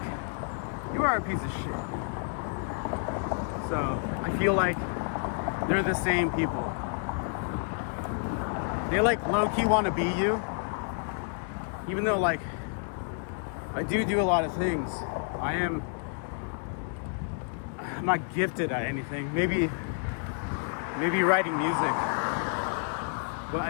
you are a piece of shit. So I feel like they're the same people. They like low-key want to be you, even though like I do a lot of things. I'm not gifted at anything. Maybe writing music, but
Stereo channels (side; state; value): right; silent; 58 dB below the other